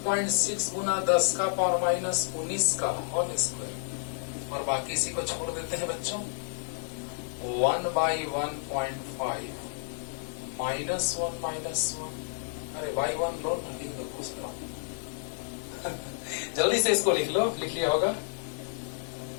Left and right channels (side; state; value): right; silent; 58 dB below the other